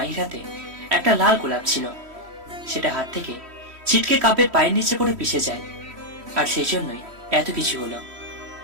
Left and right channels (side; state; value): left; late; 3.1 ms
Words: হাতে একটা লাল গোলাপ ছিল, সেটা হাত থেকে ছিটকে কাব্যের পায়ের নিচে পড়ে পিষে যায়। আর সেই জন্যই এত কিছু হলো।